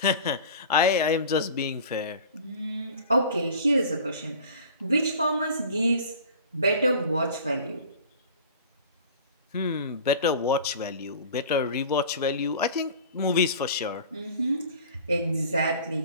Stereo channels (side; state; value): both; inverted; correlation -0.42